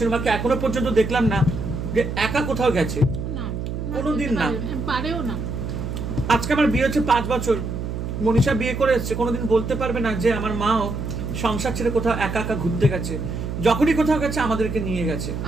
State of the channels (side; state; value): right; noise; hum, 4 dB below the sound